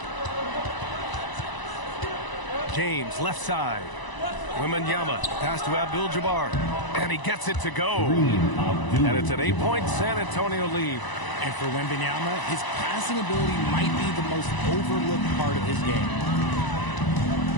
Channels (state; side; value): late; right; 1.0 ms